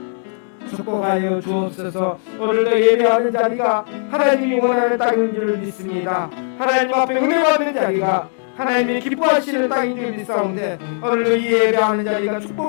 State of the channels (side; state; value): right; silent; 65 dB below the other